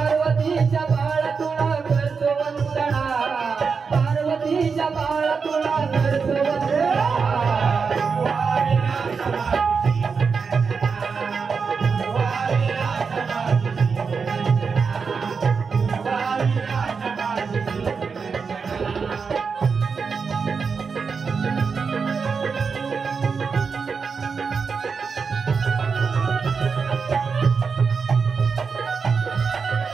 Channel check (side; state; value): left; quieter; 5.4 dB